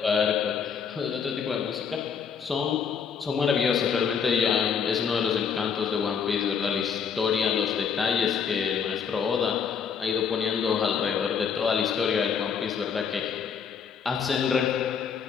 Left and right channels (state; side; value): quieter; right; 6.8 dB